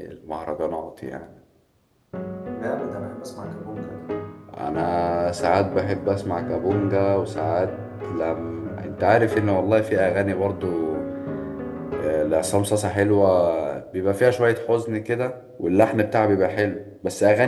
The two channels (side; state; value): both; identical; correlation 1.00